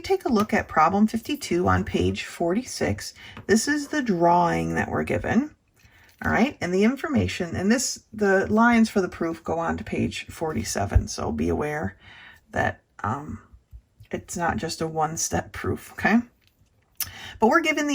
a look at problem 52 on page 46, this is the drawing that we're given. All right, and the information, and the lines for the proof go on to page 47, so be aware that it's not just a one-step proof, okay? But we're given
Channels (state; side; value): identical; both; correlation 1.00